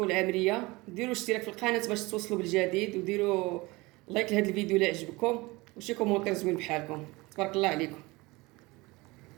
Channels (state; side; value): quieter; left; 22.9 dB